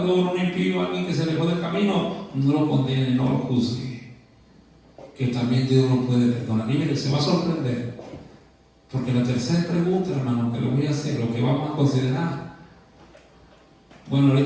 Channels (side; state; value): both; identical; correlation 1.00